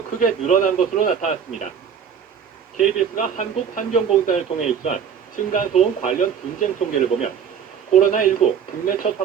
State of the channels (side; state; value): left; quieter; 7.6 dB